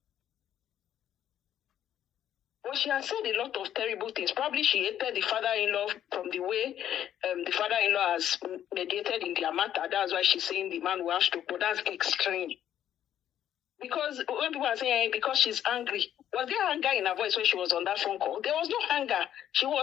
Well, she has said a lot of terrible things. Probably she hated the father-in-law from the way the father-in-law has mediated in their matter. That's why she's saying the man will have stroke. But that's extreme. Because when people are saying because she's angry, was there anger in her voice when she was on that phone call? There was no anger. She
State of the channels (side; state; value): right; quieter; 10.7 dB